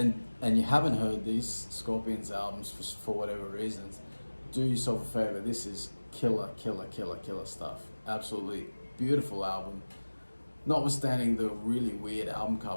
and you haven't heard these Scorpions albums for whatever reasons, do yourself a favor. This is killer stuff. Absolutely beautiful album. Notwithstanding the really weird album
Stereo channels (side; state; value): both; inverted; correlation -1.00